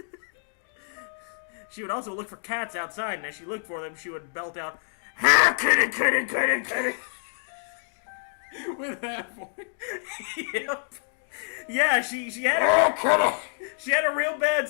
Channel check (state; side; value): quieter; right; 39.8 dB